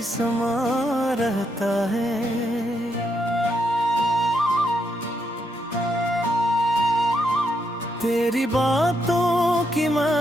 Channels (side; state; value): both; normal; correlation 0.79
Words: समा रहता है। तेरी बातों की